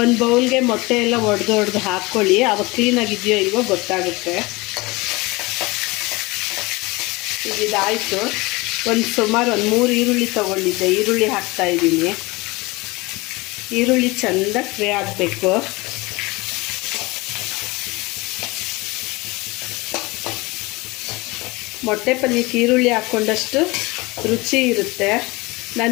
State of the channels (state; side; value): quieter; right; 23.5 dB